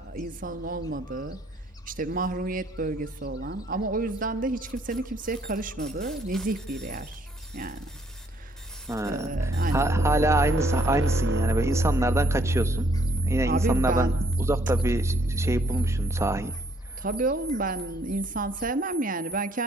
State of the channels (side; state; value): both; normal; correlation 0.67